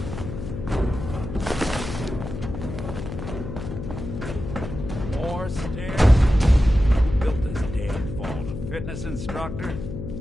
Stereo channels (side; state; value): left; noise; hum, 7 dB below the sound